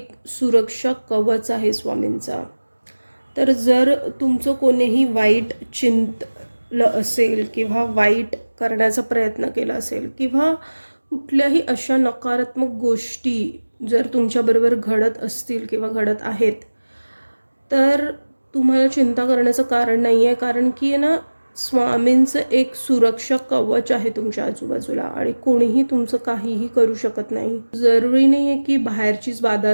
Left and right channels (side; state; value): both; inverted; correlation -1.00